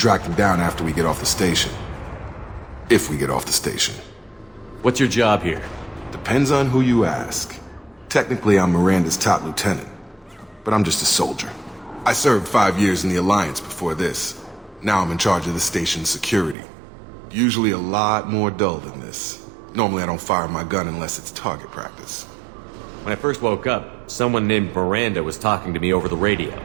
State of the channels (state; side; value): drops out; left; at 16.6 s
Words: them down after we get off the station. If we get off the station. What's your job here? Depends on who you ask. Technically, I'm Miranda's top lieutenant. But I'm just a soldier. I served 5 years in the Alliance before this. Now I'm in charge of the station's security. Usually a lot more dull than this. Normally I don't fire my gun unless it's target practice. When I first woke up, someone named Miranda was talking to me over the radio.